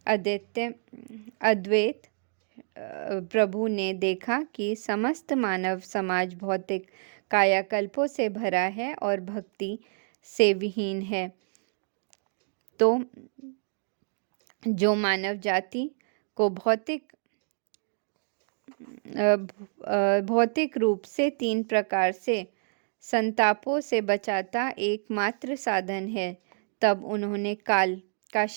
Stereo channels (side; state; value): left; silent; digital silence